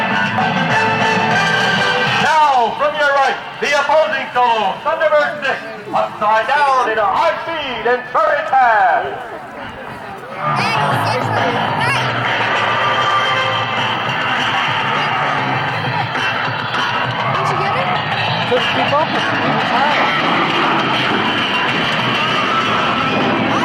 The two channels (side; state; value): both; identical; correlation 1.00